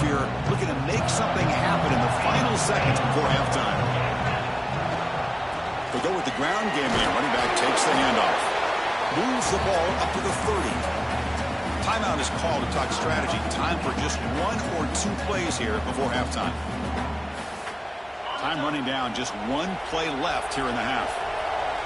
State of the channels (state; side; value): identical; both; correlation 1.00